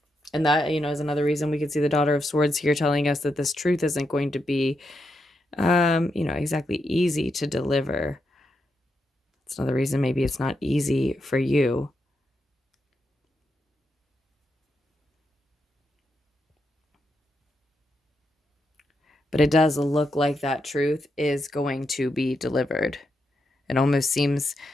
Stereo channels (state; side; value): normal; both; correlation 0.83